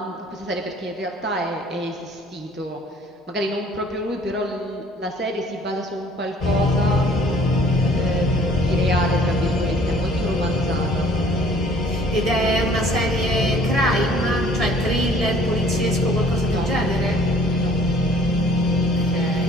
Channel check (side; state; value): both; normal; correlation 0.55